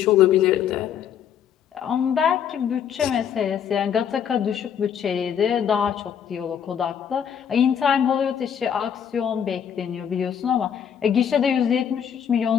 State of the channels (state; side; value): quieter; right; 8.4 dB